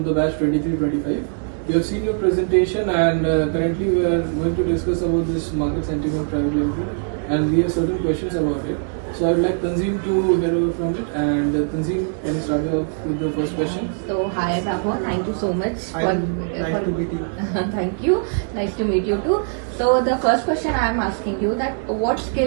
the batch 23-25. We have seen your presentation and currently we are going to discuss about this market sentiment private limited and we have certain questions about it. So I would like Tanzim to hear from it and Tanzim, can you start with the first question? So hi Vaibhav, thank you so much. Nice to meet you. Thank you. Nice to meet you too. So the first question I am asking you that what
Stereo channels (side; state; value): left; silent; digital silence